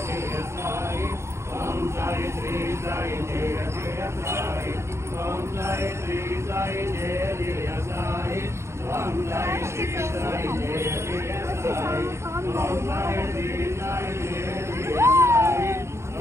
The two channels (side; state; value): left; late; 0.13 ms